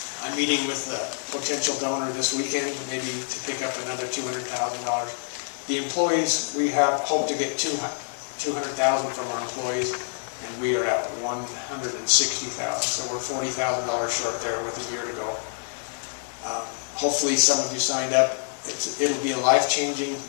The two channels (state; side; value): silent; right; 61 dB below the other